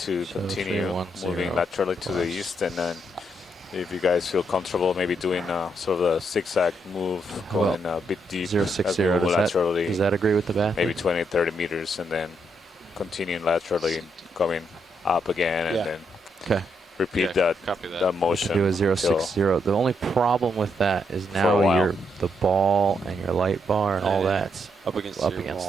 continue moving laterally to the east, and then if you guys feel comfortable, maybe doing sort of a zigzag move, going a bit deep. 060. Does that agree with the bath? Maybe 20, 30 meters, and then continuing laterally, coming up again, and then repeat that motion. Do a 060. The only problem with that is now the ball and your light bar and all that's up against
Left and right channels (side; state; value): both; normal; correlation 0.77